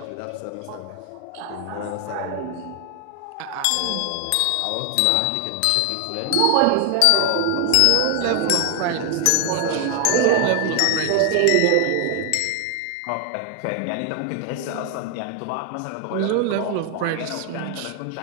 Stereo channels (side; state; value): both; different; correlation 0.00